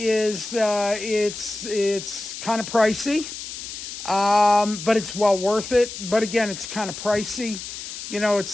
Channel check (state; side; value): noise; left; hiss, 9 dB below the sound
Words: it's kind of pricey, but it's well worth it. But again, it's kind of pricey. You know,